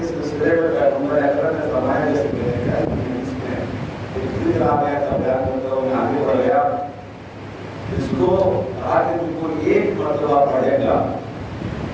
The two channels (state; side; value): identical; both; correlation 1.00